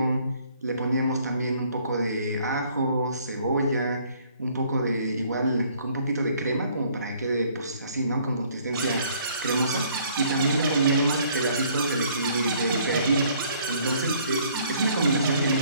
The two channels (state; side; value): inverted; both; correlation -0.61